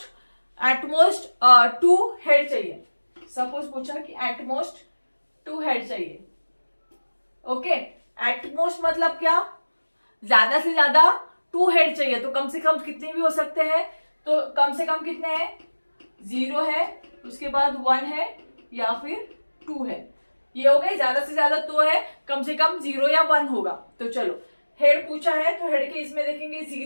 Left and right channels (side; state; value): both; inverted; correlation -1.00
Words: 2 हेड चाहिए, सपोज पूछा कि एटमोस्ट 2 हेड चाहिए। ओके, एटमोस्ट मतलब क्या, ज्यादा से ज्यादा 2 हेड चाहिए, तो कम से कम कितने भी हो सकते हैं, तो कम से कम कितने हैं, 0 है, उसके बाद 1 है, या फिर 2 है, ये हो गए, ज्यादा से ज्यादा 2 है, कम से कम 0 या 1 होगा। तो चलो हेड पूछा है तो हेड के इसमें देखेंगे,